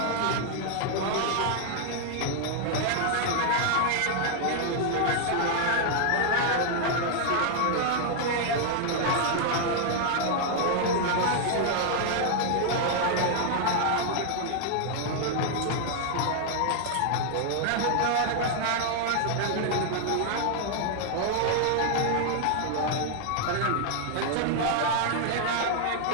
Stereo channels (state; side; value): different; both; correlation 0.00